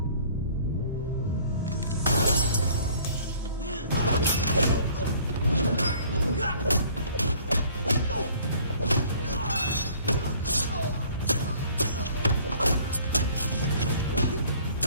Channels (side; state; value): both; inverted; correlation -0.54